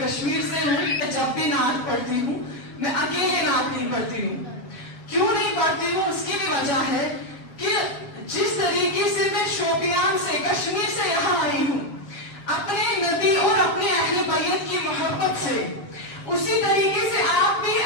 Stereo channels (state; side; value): late; right; 7.3 ms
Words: کشمیر سے ہوں، جب بھی نعت پڑھتی ہوں میں اکیلے نعت نہیں پڑھتی ہوں. کیوں نہیں پڑھتی ہوں؟ اس کی بھی وجہ ہے کہ جس طریقے سے میں شوپیان سے کشمیر سے یہاں آئی ہوں اپنے نبی اور اپنے اہل بیت کی محبت سے، اسی طریقے سے آپ بھی